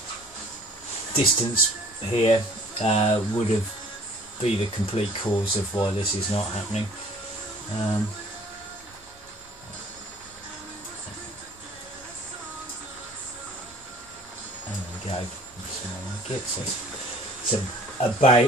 distance here would have been the complete cause of why this is not happening. There we go. So it's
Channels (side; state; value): right; noise; rumble, 27 dB below the sound